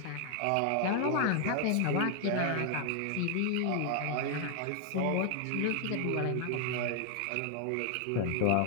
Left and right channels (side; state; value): both; different; correlation 0.00